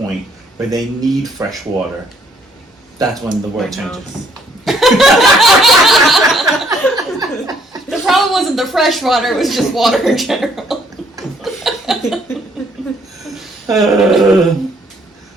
where they need fresh water, that's when the world changes. The problem wasn't the fresh water, it was just water in general.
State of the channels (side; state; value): both; normal; correlation 0.66